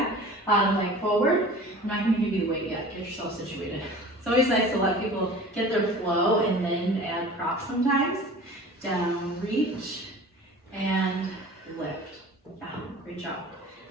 bottom leg forward. I'm not gonna give you the weight yet. Get yourself situated. It's always nice to let people get their flow and then add props sometimes. Down, reach, and lift. Yeah, great job.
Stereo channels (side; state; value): both; normal; correlation 0.41